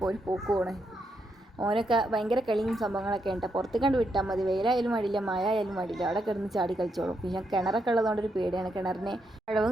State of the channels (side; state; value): both; normal; correlation 0.80